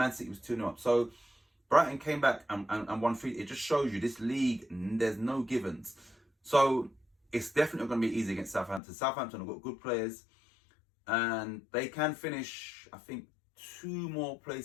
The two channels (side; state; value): right; drops out; at 8.8 s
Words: City was 2-0 up. So Brighton came back and won 3. It just shows you this league, there's no givens. So it's definitely going to be easy against Southampton. Southampton have got good players, and they can finish, I think, 2 more